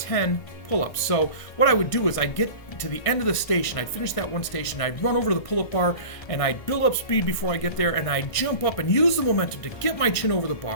pull-ups. So what I would do is I'd get to the end of the station, I'd finish that one station, I'd run over to the pull-up bar, and I'd build up speed before I get there, and I'd jump up and use the momentum to get my chin over the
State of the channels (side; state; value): right; late; 1.6 ms